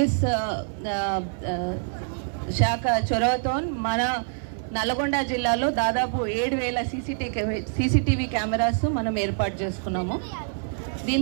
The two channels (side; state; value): left; silent; 58 dB below the other